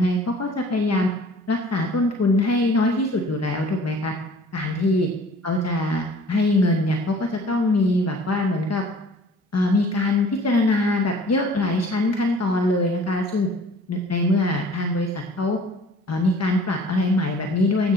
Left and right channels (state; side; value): normal; both; correlation 0.50